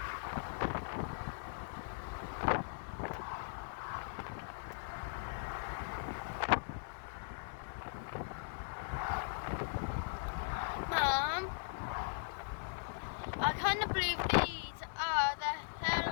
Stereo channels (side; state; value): right; silent; digital silence